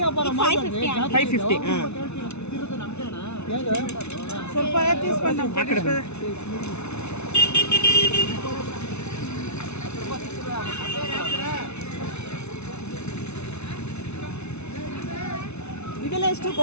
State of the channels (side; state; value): right; late; 0.81 ms